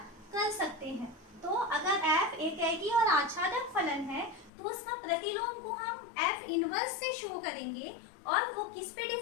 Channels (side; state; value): right; drops out; at 4.5 s